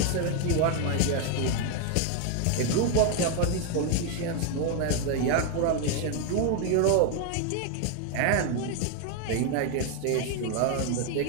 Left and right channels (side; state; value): both; different; correlation 0.01